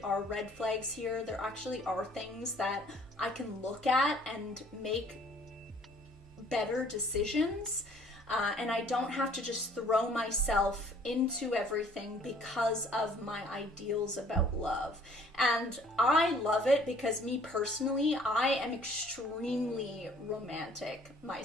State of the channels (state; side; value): normal; both; correlation 0.57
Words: are red flags here. There actually are things that I can look at and make better decisions. And I don't have to just throw myself into everything because of my ideals about love. And I love it because me personally, I am extremely romantic